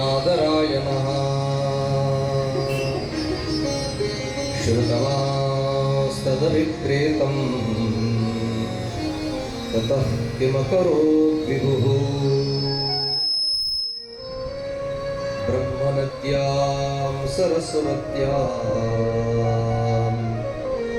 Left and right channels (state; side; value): identical; both; correlation 1.00